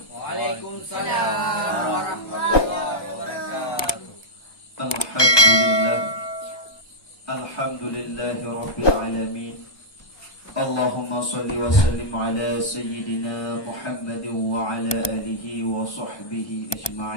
Waalaikumsalam warahmatullahi wabarakatuh. Alhamdulillahi rabbil alamin. Allahumma salli wa sallim ala sayyidina Muhammadin wa ala alihi wa sahbihi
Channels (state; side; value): late; right; 1.2 ms